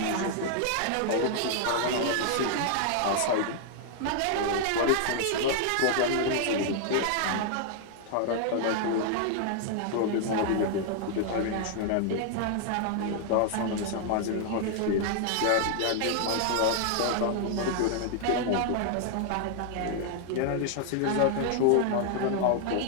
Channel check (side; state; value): both; different; correlation 0.00